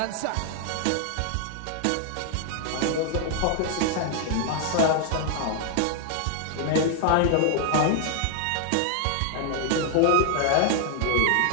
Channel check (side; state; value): both; different; correlation 0.00